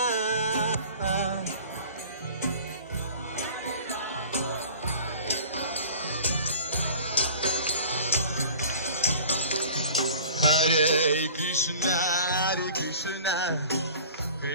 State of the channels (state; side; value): inverted; both; correlation -0.43